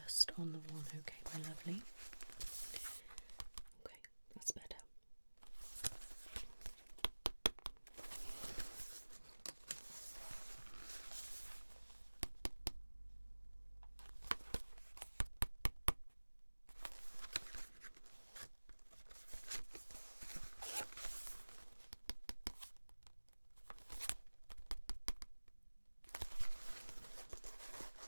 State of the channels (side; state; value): both; inverted; correlation -1.00